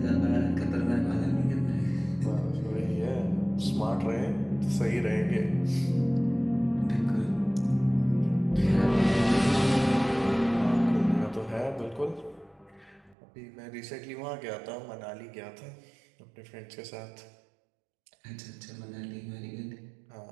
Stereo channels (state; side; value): drops out; left; at 13.2 s